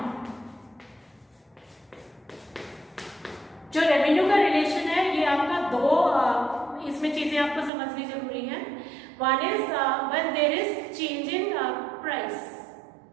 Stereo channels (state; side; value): drops out; left; at 7.7 s